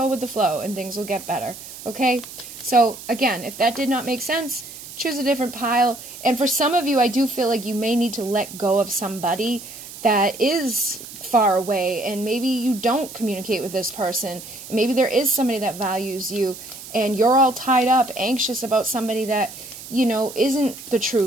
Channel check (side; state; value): right; noise; hiss, 14 dB below the sound